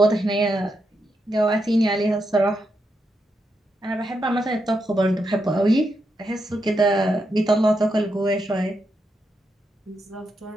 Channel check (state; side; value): normal; both; correlation 0.83